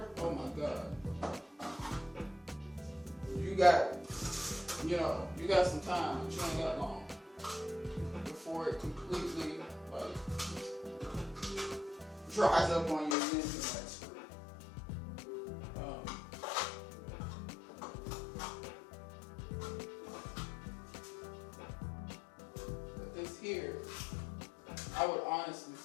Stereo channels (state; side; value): drops out; right; at 13.2 s